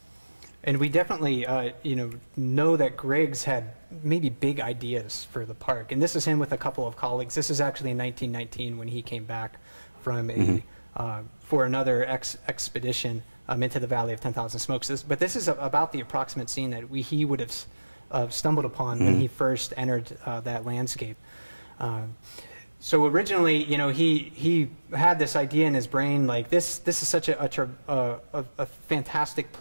And we definitely, know that Griggs had maybe big ideas for the park. And this is him with a couple of colleagues. This is actually in 1919 when he came back from for another expedition into the Valley of 10,000 Smokes. But this is about the approximate scene that he would have stumbled upon when he first entered that landscape. So originally, he had this idea in his brain, like this is such a fantastic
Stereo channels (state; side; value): inverted; both; correlation -1.00